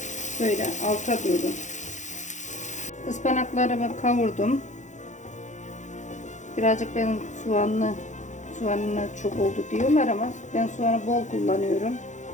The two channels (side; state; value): right; late; 0.35 ms